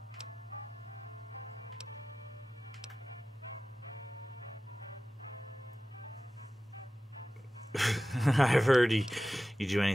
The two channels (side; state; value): both; normal; correlation 0.95